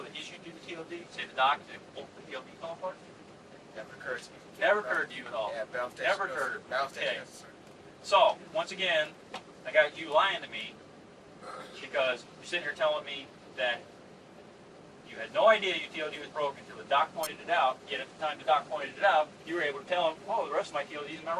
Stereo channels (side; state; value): both; identical; correlation 1.00